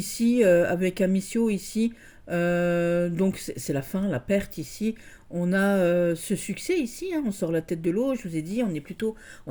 avec Amicio, ici, donc c'est la fin, la perte ici. On a ce succès ici, hein, on sort la tête de l'eau, je vous ai dit, on est plutôt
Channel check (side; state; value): both; identical; correlation 1.00